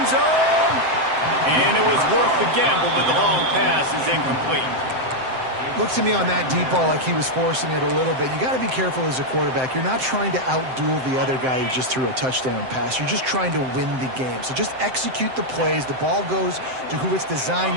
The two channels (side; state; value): left; late; 7.7 ms